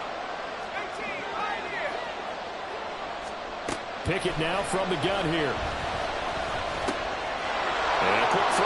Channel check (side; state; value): both; identical; correlation 1.00